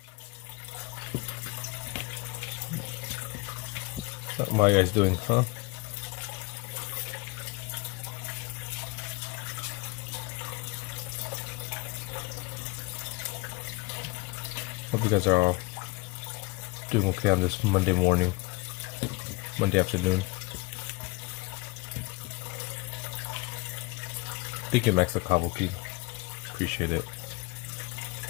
What are you guys doing, huh? Hope you guys are all doing okay on this Monday morning, Monday afternoon. Thank you, Max the Kabuki. Appreciate it.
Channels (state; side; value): quieter; right; 24.6 dB